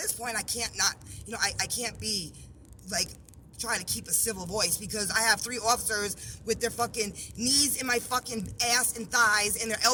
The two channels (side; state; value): both; identical; correlation 1.00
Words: point, I can't not, I can't be, like, try to keep a civil voice, because I have 3 officers with their fucking knees in my fucking ass and thighs and their